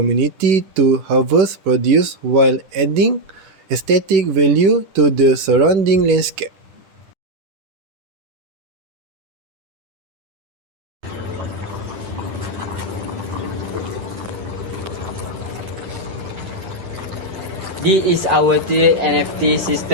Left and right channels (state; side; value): late; left; 10 ms